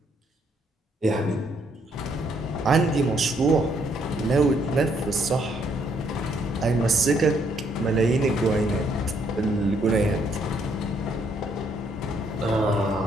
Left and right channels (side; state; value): both; normal; correlation 0.70